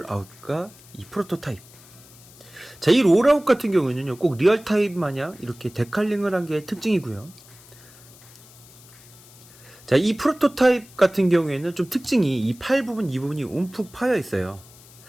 이 프로토타입. 자, 이 롤아웃 같은 경우에는요, 꼭 리얼타입 마냥 이렇게 데칼링을 한 게 특징이고요. 자, 이 프로토타입 같은 경우에는 좀 특징이 이 팔 부분, 이 부분이 움푹 파여 있어요.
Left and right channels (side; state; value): left; noise; hiss, 23 dB below the sound